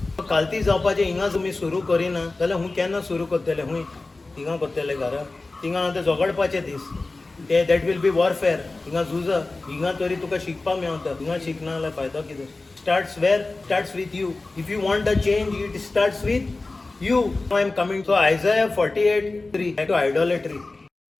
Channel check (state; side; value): quieter; right; 3.3 dB